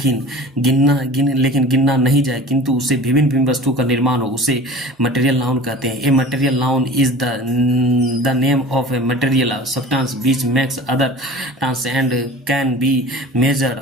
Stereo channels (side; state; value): both; normal; correlation 0.40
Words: गिनना नहीं जाए, किंतु उसे विभिन्न विभिन्न वस्तुओं का निर्माण हो, उसे मटेरियल नाउन कहते हैं। A material noun is the name of a material substance which makes other tons and can be measured